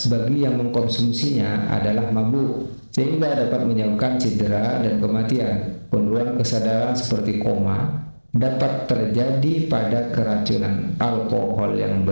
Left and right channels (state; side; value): inverted; both; correlation -1.00